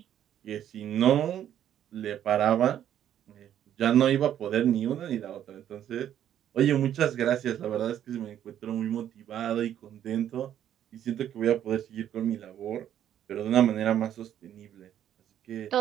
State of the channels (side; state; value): left; quieter; 10.6 dB